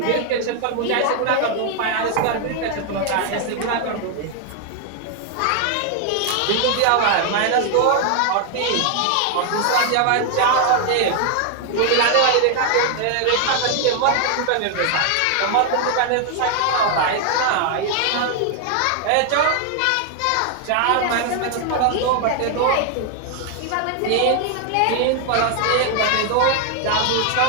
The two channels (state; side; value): different; both; correlation 0.00